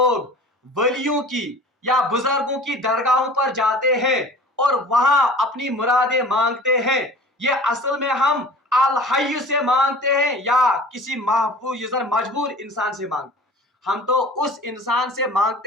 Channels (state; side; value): normal; both; correlation 0.42